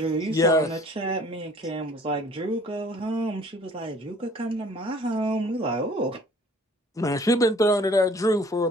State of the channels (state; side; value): normal; both; correlation 0.53